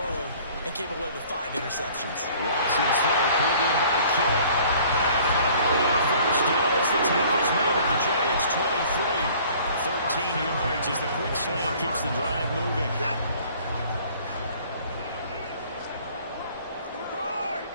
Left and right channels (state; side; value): inverted; both; correlation -0.53